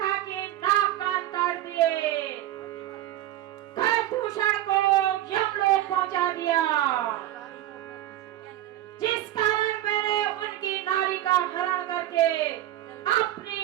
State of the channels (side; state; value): left; quieter; 13.9 dB